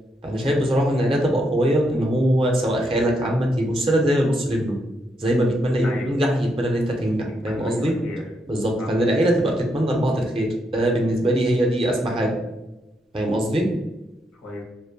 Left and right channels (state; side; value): normal; both; correlation 0.79